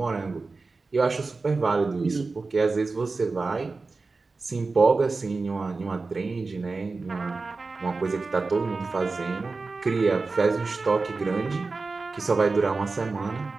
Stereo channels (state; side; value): quieter; left; 3.9 dB